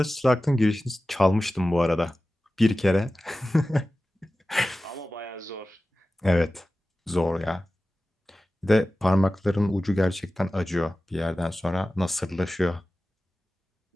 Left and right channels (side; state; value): both; normal; correlation 0.95